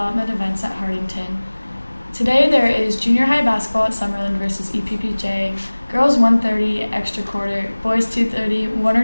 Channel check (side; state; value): both; inverted; correlation -1.00